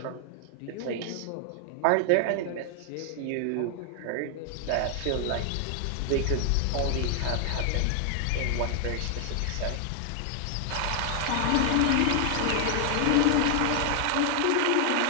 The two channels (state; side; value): different; both; correlation 0.00